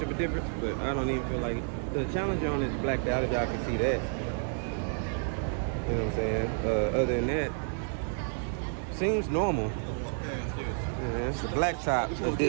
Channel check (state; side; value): silent; left; 58 dB below the other